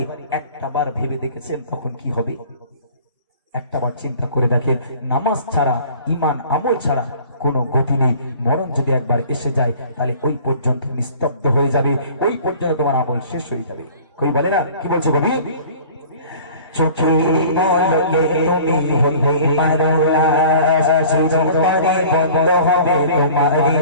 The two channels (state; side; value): inverted; both; correlation -0.46